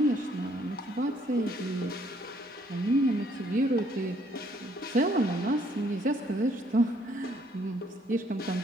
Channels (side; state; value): both; normal; correlation 0.66